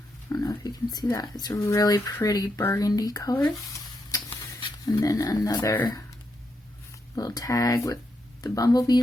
I don't know if you can see that. It's a really pretty burgundy color. And then another little tag with the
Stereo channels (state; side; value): normal; both; correlation 0.82